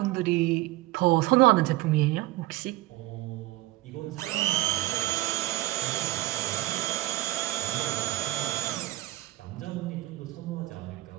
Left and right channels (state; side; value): quieter; left; 17.8 dB